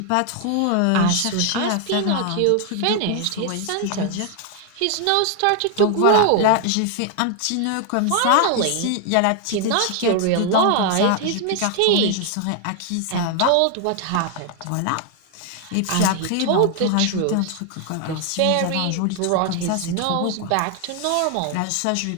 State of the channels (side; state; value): both; different; correlation 0.00